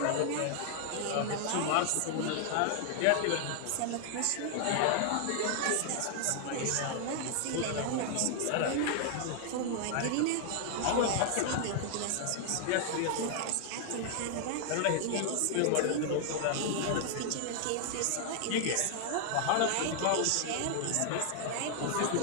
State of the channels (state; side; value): different; both; correlation 0.00